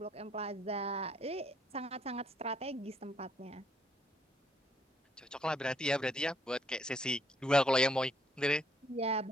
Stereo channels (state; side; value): normal; both; correlation 0.69